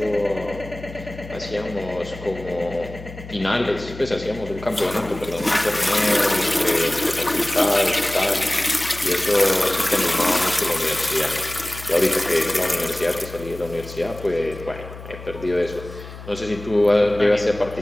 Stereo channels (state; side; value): noise; left; hum, 14 dB below the sound